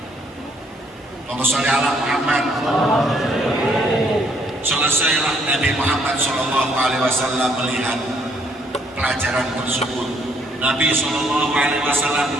Allahumma sholli ala Muhammad. Selesailah Nabi Muhammad SAW melihat pelajaran tersebut. Nabi SAW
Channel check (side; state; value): both; normal; correlation 0.67